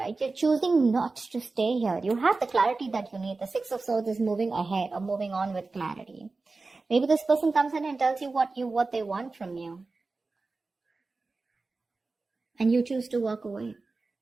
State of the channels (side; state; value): left; quieter; 3.7 dB